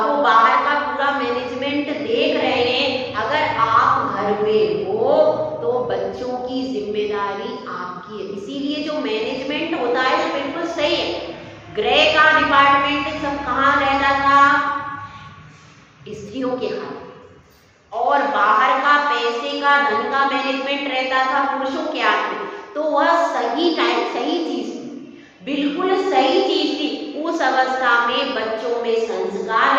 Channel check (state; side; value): identical; both; correlation 1.00